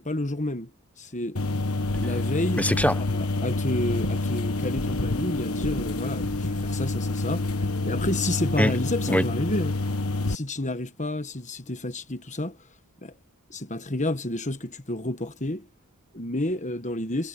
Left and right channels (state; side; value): normal; both; correlation 0.63